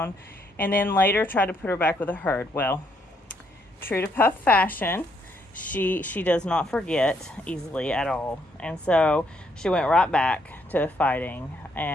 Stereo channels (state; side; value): normal; both; correlation 0.73